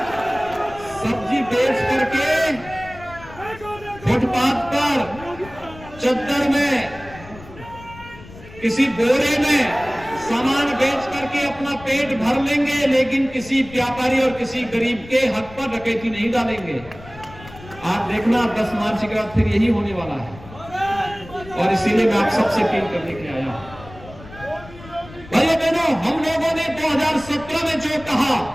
सब्जी बेच करके फुटपाथ पर, चद्दर में, किसी बोरे में सामान बेच करके अपना पेट भर लेंगे, लेकिन किसी व्यापारी और किसी गरीब के हक पर डकैती नहीं डालेंगे। आप देखना 10 मार्च के बाद फिर यही होने वाला है। और इसीलिए मैं आप सबसे अपील करने के लिए आया हूं। भाइयों बहनों, हम लोगों ने 2017 में जो कहा,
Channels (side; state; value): left; noise; rumble, 18 dB below the sound